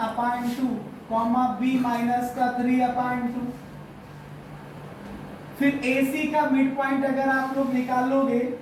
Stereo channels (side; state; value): both; identical; correlation 1.00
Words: upon 2 comma b minus का 3 अपान 2। फिर AC का मिड पॉइंट अगर आप लोग निकालोगे,